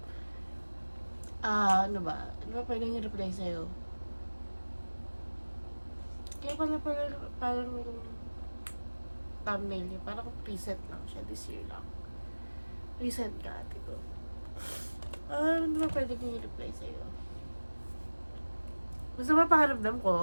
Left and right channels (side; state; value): both; inverted; correlation -1.00